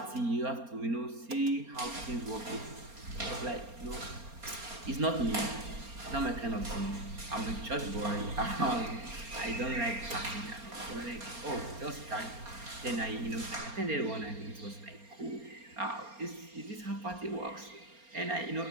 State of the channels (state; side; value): late; left; 4.3 ms